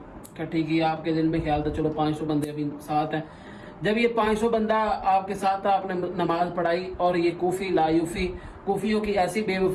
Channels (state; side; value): identical; both; correlation 1.00